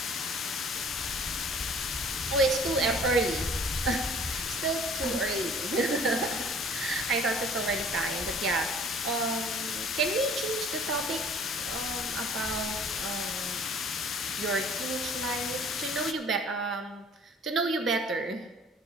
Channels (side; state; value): both; normal; correlation 0.52